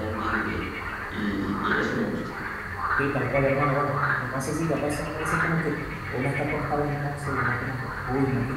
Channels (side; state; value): both; identical; correlation 1.00